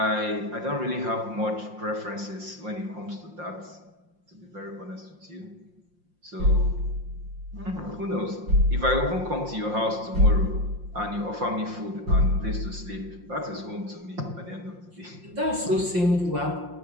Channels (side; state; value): left; late; 5.7 ms